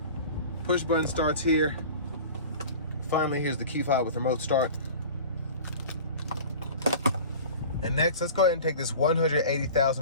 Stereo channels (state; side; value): inverted; both; correlation -0.39